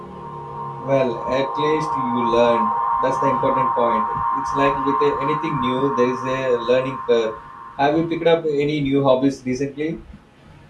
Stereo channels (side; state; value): both; identical; correlation 1.00